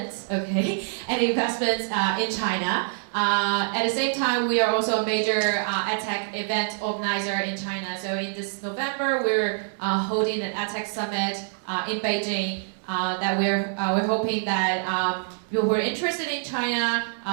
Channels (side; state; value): left; silent; digital silence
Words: in China. At the same time, we are also a major EdTech event organizer in China. So in this November, we're holding an EdTech summit in Beijing. That we're hoping that you who are interested in China,